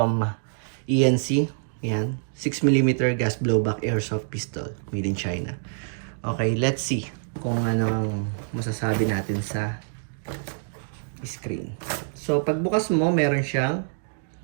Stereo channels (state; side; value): silent; left; digital silence